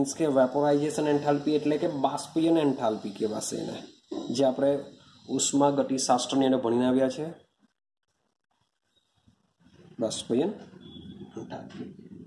કે વેપોરાઇઝેશન એન્થાલ્પી, એટલે કે બાષ્પીયન એન્થાલ્પી કહેવાશે એને, જે આપણે ઉષ્મા ગતિશાસ્ત્રની અંદર ભણીને આવ્યા છે. બાષ્પીયન એન્થાલ્પી.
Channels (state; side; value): identical; both; correlation 1.00